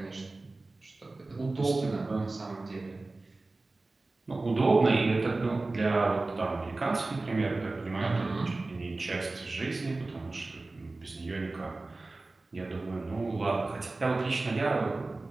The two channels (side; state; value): left; quieter; 3.2 dB